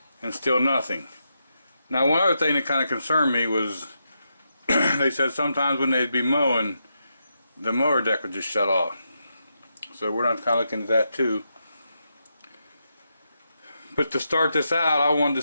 and still nothing. Now, one other thing that kind of concerned me was they said sometimes when they'd be mowing, the mower deck would just shut off. So we're not kind of looking at that too. But to start this out, I wanted to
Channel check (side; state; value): both; inverted; correlation -0.84